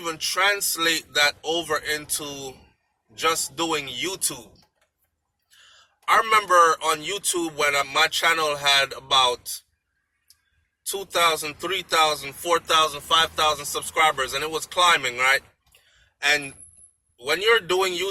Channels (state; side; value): identical; both; correlation 1.00